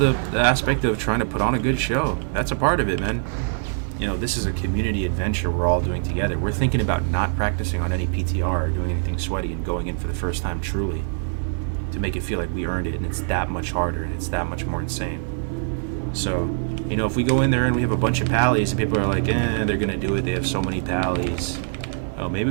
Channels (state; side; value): silent; left; digital silence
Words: aspect of trying to put on a good show. That's a part of it, man. You know, this is a community adventure we're all doing together. We're thinking about not practicing on any PTR or doing anything sweaty and going in for the first time truly to make it feel like we earned it, and it's that much harder and it's that much more insane. So, you know, if we go in there and we have a bunch of pallies and people are like, they're gonna do it, they have so many pallies. Oh, maybe